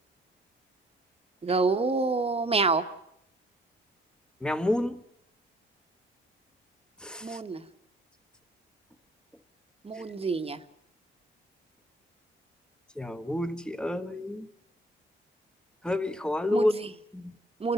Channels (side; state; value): both; normal; correlation 0.61